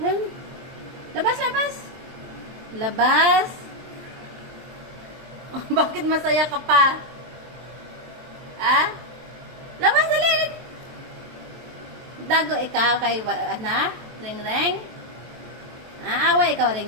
Yan. Labas, labas! Labas! Oh, bakit masaya ka pa? Ha? Labas, dali! Dago ikaw kay, Ring-ring? Away ikaw,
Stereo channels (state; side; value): late; left; 23 ms